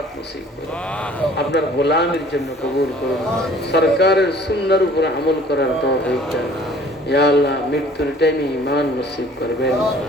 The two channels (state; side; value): normal; both; correlation 0.52